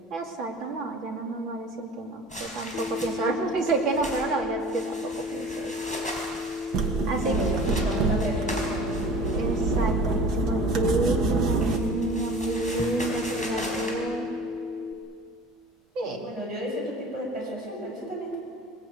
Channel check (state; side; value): normal; both; correlation 0.42